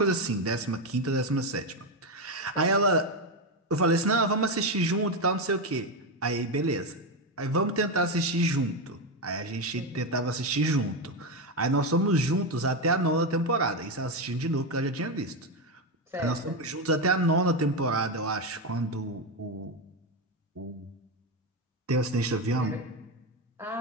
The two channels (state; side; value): normal; both; correlation 0.10